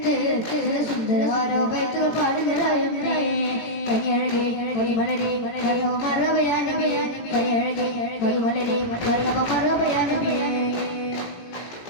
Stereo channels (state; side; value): late; right; 18 ms